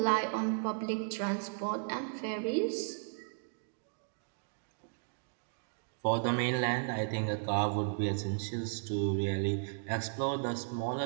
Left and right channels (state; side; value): silent; left; digital silence